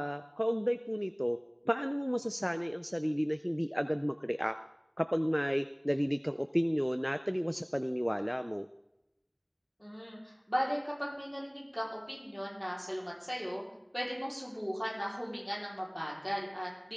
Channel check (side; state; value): both; identical; correlation 1.00